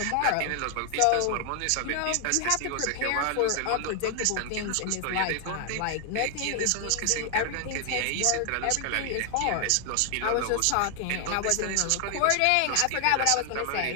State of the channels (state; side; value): different; both; correlation 0.00